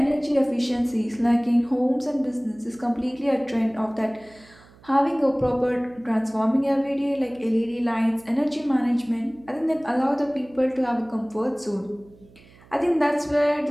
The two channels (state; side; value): noise; right; hum, 26 dB below the sound